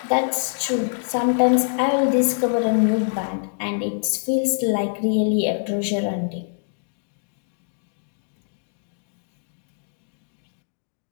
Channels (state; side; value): silent; right; digital silence